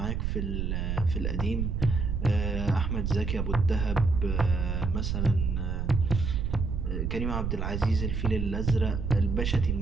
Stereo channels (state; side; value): noise; right; rumble, 1 dB below the sound